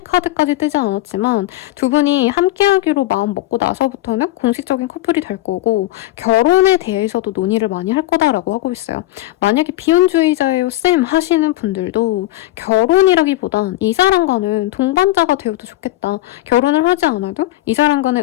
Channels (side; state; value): right; quieter; 16.1 dB